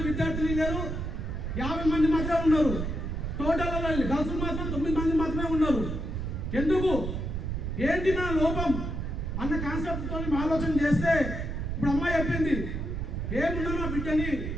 50 మంది మాత్రమే ఉన్నారు. టోటల్ గర్ల్స్ మాత్రం 9 మంది మాత్రమే ఉన్నారు. ఎందుకు, ఏంటి నా లోపం అన్న కాన్సెప్ట్తో ఆలోచన చేస్తే, ఇప్పుడు అమ్మాయి చెప్పింది, ఏమున్నా నా బిడ్డని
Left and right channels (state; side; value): noise; right; rumble, 3 dB below the sound